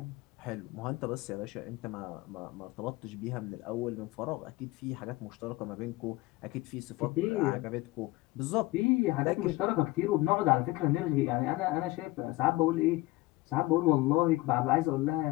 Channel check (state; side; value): quieter; right; 19.8 dB